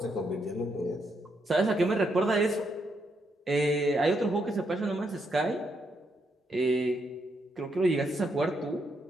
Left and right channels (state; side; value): normal; both; correlation 0.78